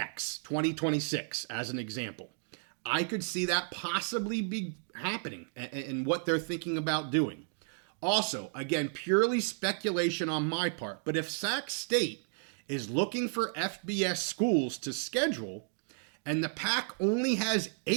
2026, as an example. I could see that possibly be happening and what they're thinking about doing. Also, again, purely speculation on my part, but if Sac State is looking for FBS schools to schedule, and the PAC only has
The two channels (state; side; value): silent; left; 56 dB below the other